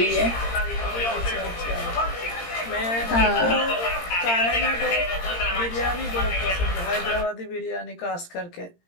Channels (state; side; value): late; right; 17 ms